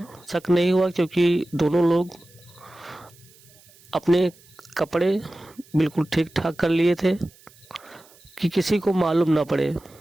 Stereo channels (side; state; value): right; noise; hiss, 27 dB below the sound